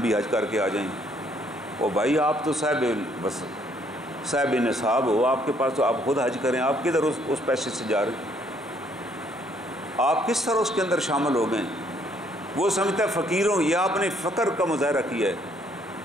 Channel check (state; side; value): normal; both; correlation 0.66